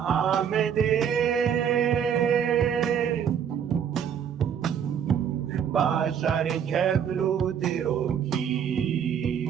آمده باشار کبلو دیروکی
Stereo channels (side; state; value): left; quieter; 8.3 dB